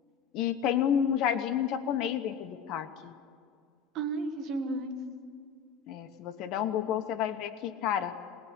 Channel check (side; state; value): right; quieter; 7.0 dB